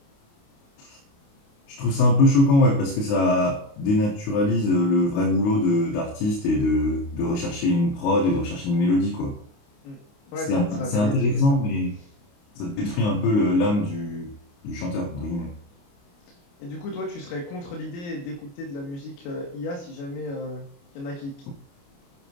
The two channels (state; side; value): late; right; 29 ms